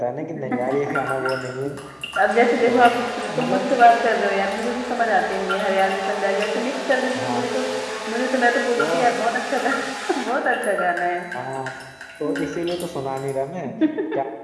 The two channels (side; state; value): both; identical; correlation 1.00